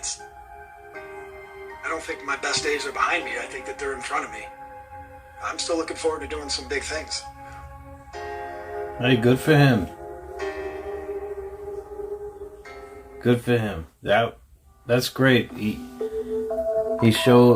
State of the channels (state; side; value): identical; both; correlation 1.00